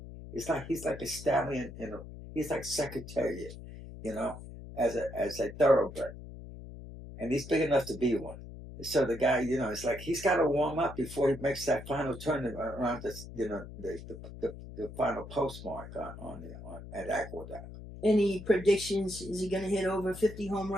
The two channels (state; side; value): noise; left; hum, 13 dB below the sound